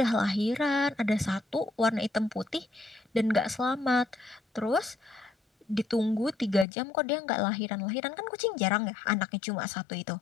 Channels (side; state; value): right; drops out; at 6.7 s